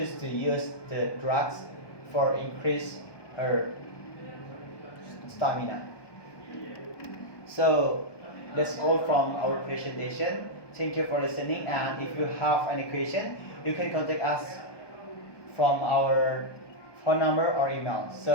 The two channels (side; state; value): right; late; 1.2 ms